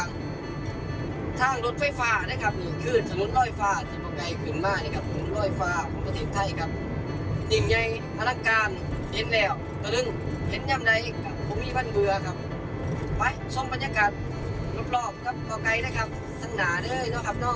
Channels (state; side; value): identical; both; correlation 1.00